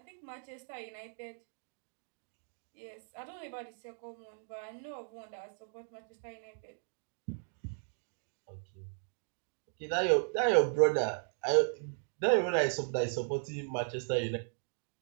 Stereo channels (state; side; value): silent; left; digital silence